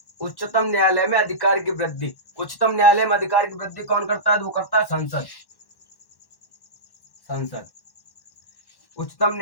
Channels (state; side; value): late; right; 1.1 ms